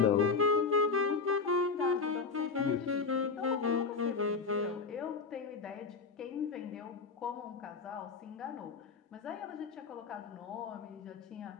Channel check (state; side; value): quieter; right; 4.8 dB